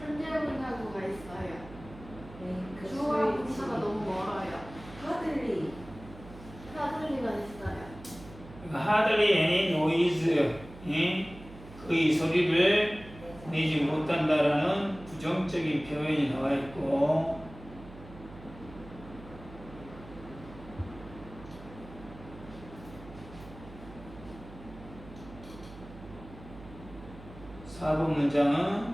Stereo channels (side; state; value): right; noise; hum, 17 dB below the sound